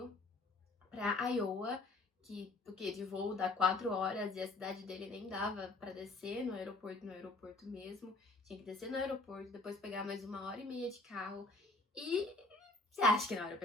pra Iowa, que o quê? De voo dá 4 horas e a cidade dele nem dava pra descer no aeroporto mesmo. Tinha que descer no aeroporto, depois pegar mais 1h30 de carro. E você acha que não era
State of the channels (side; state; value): right; quieter; 3.2 dB